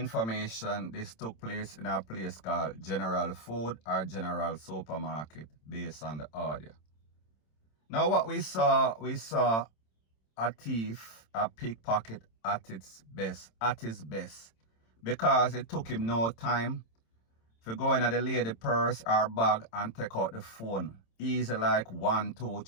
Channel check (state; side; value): late; right; 27 ms